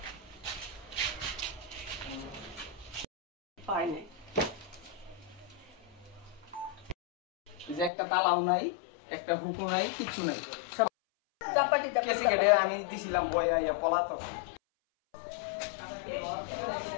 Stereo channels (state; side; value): drops out; right; at 7.9 s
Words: পাইনি এই যে একটা তালাও নাই একটা হুকু নাই কিছু নাই সব চাপাটি কেসে কেটে আমি দিছিলাম বয়া ইয়া পলাতক